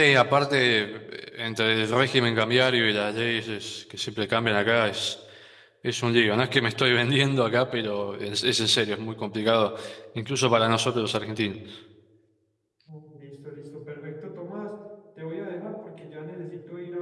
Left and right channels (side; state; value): both; identical; correlation 1.00